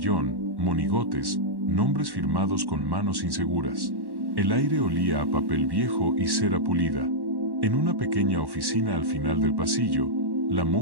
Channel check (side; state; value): left; late; 1.1 ms